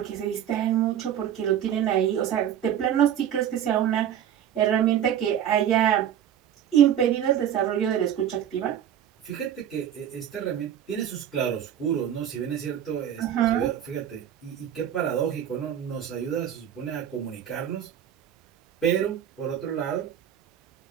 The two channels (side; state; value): left; quieter; 10.0 dB